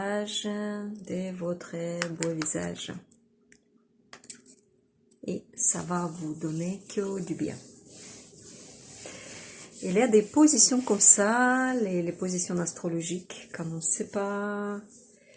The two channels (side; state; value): both; identical; correlation 1.00